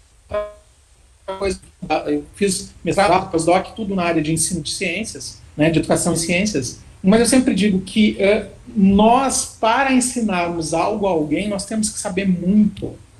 coisa. Eu fiz mestrado, pós-doc, tudo na área de ensino de ciências, né, de educação em ciências. Mas eu sempre digo que nós, para ensinarmos algo a alguém, nós temos que saber muito,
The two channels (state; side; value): identical; both; correlation 1.00